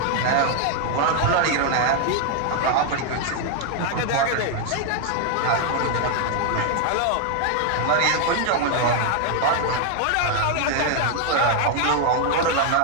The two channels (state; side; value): different; both; correlation 0.00